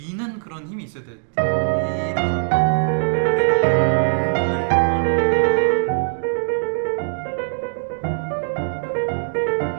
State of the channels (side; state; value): left; silent; digital silence